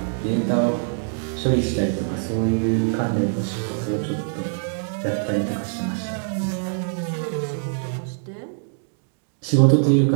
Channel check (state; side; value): silent; left; digital silence